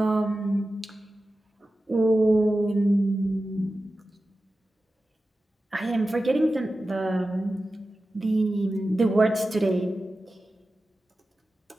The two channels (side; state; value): both; normal; correlation 0.94